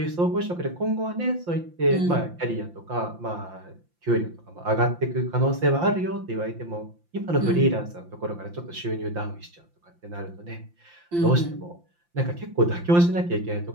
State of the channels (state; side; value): late; left; 5.8 ms